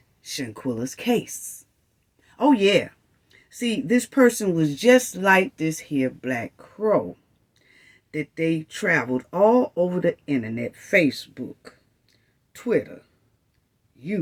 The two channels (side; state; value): both; identical; correlation 1.00